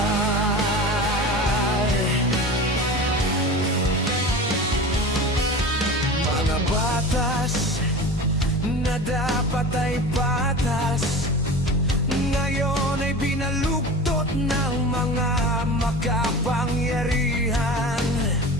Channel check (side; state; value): both; normal; correlation 0.33